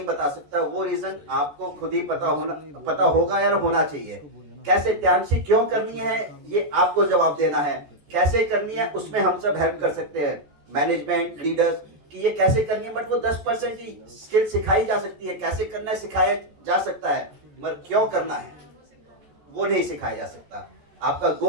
बता सकता, वो रीजन आपको खुद ही पता होगा या होना चाहिए। कैसे त्यालशी क्यों करनी है, ये आपको जवाब देना है। कैसे करनी है उसमें हम सब हेल्प कर सकते हैं, मैनेजमेंट, लीडर्स, कि ये कैसे करनी है, बट वो 10% ही स्किल सिखाई जा सकती है। कैसे करना है सिखाया जा सकता है, मगर क्यों करना है वो नहीं सिखाया जा सकता। आपका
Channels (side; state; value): left; late; 14 ms